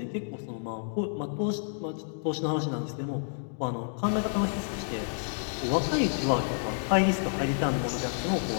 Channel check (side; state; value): right; silent; digital silence